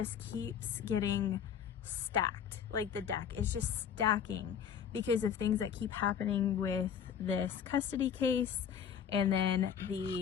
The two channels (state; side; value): quieter; right; 8.1 dB